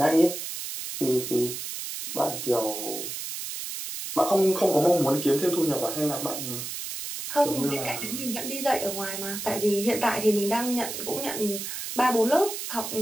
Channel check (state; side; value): noise; right; hiss, 6 dB below the sound